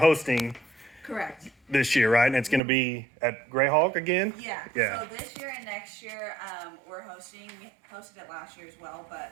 Correct. this year, right? And it's going to be at Greyhawk again? Yeah. Yeah. So this year and next year, we're hosting. We hosted it last year as well,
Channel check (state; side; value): drops out; left; at 2.6 s